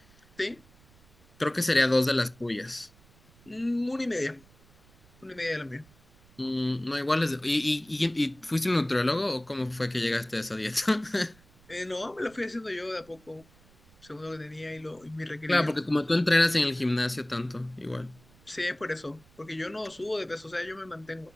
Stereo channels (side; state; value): right; noise; rumble, 28 dB below the sound